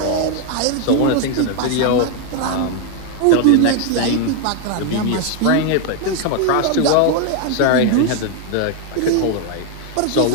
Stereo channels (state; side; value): different; both; correlation 0.01